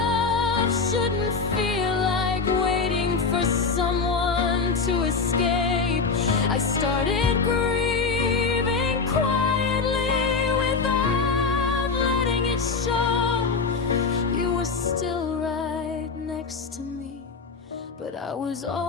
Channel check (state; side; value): quieter; right; 4.7 dB